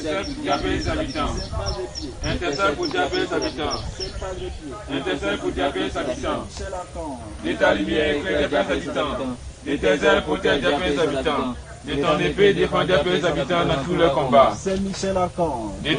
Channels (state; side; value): identical; both; correlation 1.00